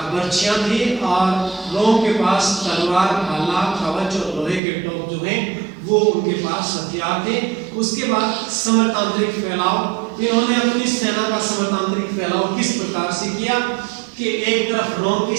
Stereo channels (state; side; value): drops out; left; at 4.6 s